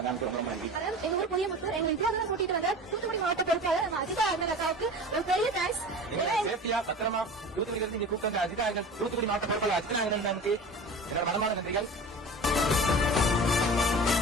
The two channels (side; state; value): both; normal; correlation 0.35